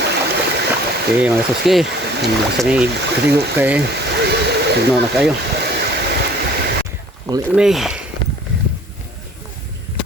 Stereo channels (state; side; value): normal; both; correlation 0.52